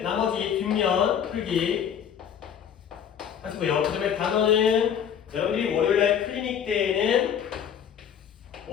나머지 뒷면 풀기 하시고요. 그 다음에 단어는 여러분들이 월요일날 클리닉 때에는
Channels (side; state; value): right; quieter; 8.4 dB